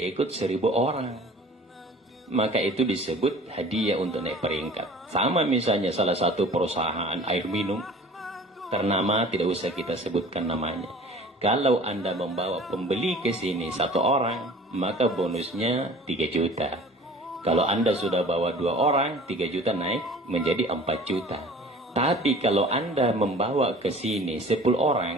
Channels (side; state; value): both; normal; correlation 0.45